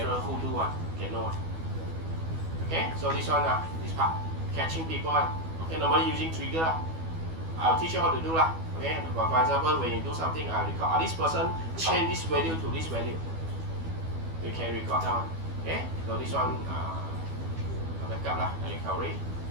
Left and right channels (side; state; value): left; late; 12 ms